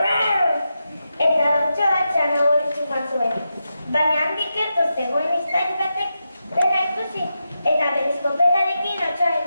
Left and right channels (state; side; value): inverted; both; correlation -0.88